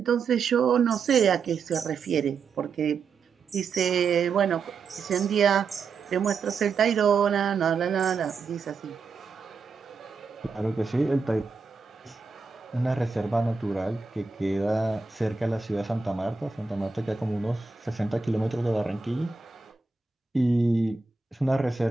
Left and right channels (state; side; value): quieter; left; 4.9 dB